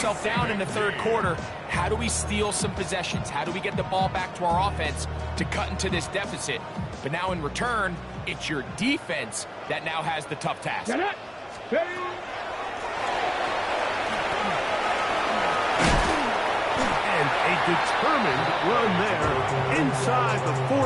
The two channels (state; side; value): identical; both; correlation 1.00